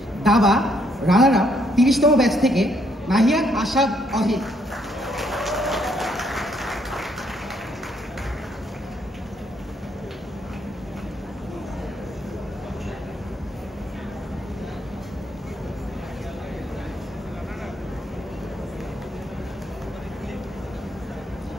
দাবা runner up 30তম batch থেকে নাহিয়ান আশাদ অহিদ।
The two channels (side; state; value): both; normal; correlation 0.71